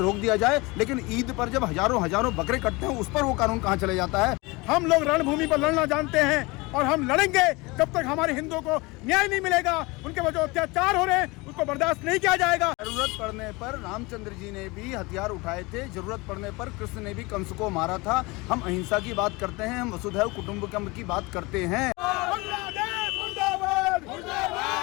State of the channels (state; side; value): quieter; right; 24.4 dB